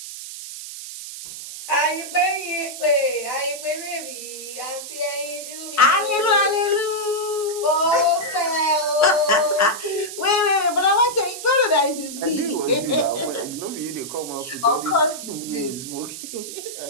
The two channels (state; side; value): noise; right; hiss, 10 dB below the sound